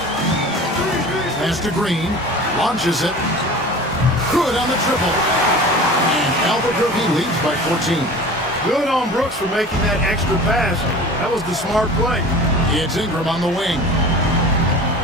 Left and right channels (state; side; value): normal; both; correlation 0.39